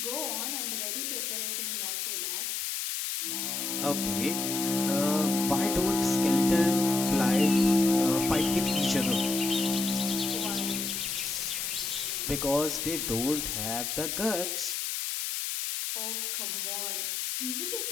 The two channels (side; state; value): left; noise; hiss, 2 dB below the sound